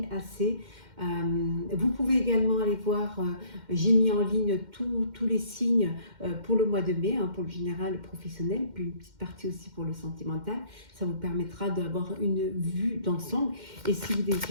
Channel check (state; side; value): late; left; 2.1 ms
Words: assez. Vous pouvez également aller voir, j'ai mis en ligne tous les signes pour le mois de mai, hein, pour le général, le professionnel, puis une petite partie aussi pour le sentimental. Ça vous permettra d'avoir une vue d'ensemble. Et si vous